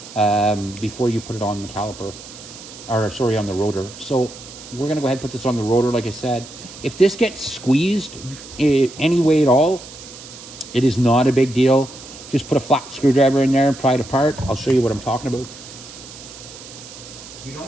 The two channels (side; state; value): right; noise; hiss, 16 dB below the sound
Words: before you put it on the caliper. Or, sorry, on the rotor. So, we're going to go ahead and put this on the rotor, like I said. If this gets squeezed any way at all, it is not a big deal. Just put a flat screwdriver in there and pry it apart. I'll show you what I'm talking about. You